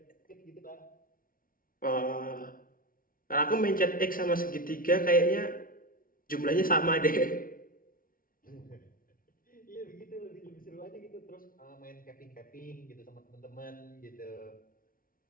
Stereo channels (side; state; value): right; late; 0.41 ms